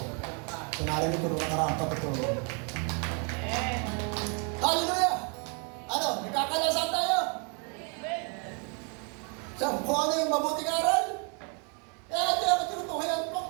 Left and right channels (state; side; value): quieter; left; 37.1 dB